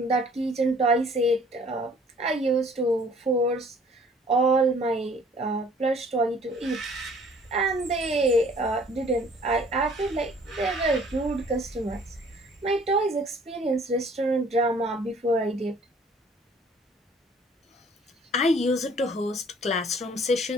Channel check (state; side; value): normal; both; correlation 0.55